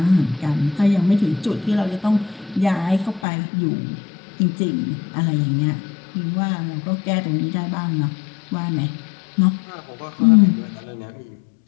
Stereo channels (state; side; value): drops out; right; at 3.2 s